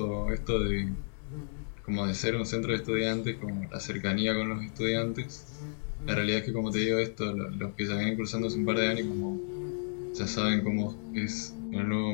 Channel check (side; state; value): right; silent; digital silence